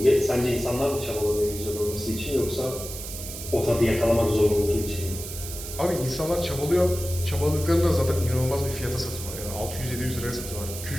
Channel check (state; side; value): noise; right; hiss, 9 dB below the sound